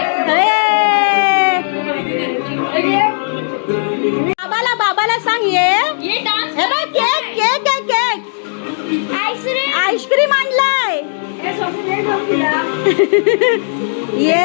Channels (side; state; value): right; silent; digital silence